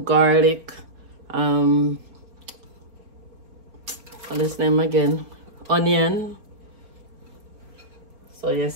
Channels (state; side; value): late; left; 4.5 ms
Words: garlic, what's his name again? Onion. So